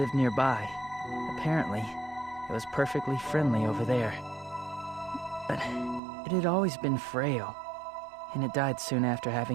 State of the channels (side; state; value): left; drops out; at 6.0 s